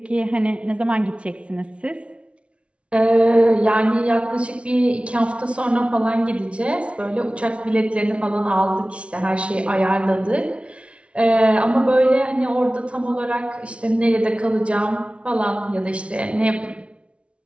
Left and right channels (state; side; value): late; left; 0.061 ms